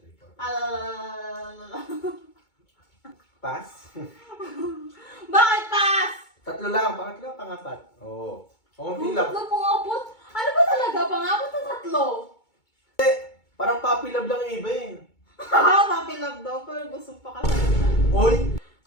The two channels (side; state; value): right; late; 2.2 ms